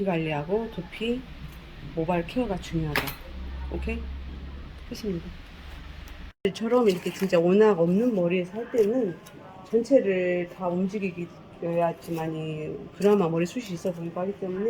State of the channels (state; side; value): identical; both; correlation 1.00